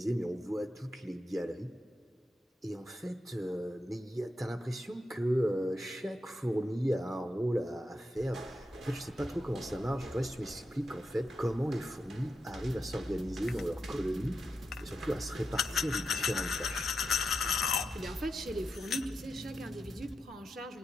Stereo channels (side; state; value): both; normal; correlation 0.88